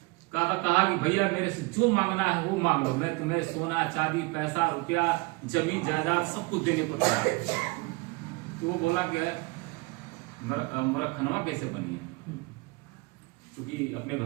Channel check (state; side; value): quieter; left; 25.6 dB